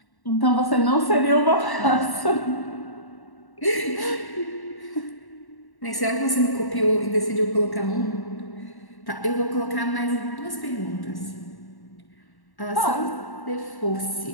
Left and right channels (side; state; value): right; late; 1.1 ms